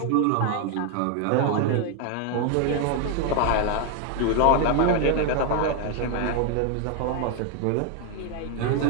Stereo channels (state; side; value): different; both; correlation 0.01